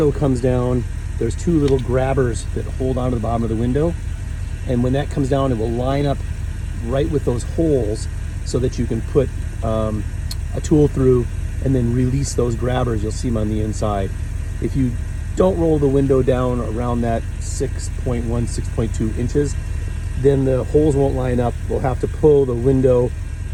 comes down, there's 2 little grabbers that hold onto the bottom of the window. And when that comes down, it will line up right with those holes so that you can put a tool through and then release those grabbers. You'll see them on the inside. If you don't roll the window down around that 6.1, 6.2 inches, then the holes won't line up. We'll have to pull the window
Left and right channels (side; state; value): both; identical; correlation 1.00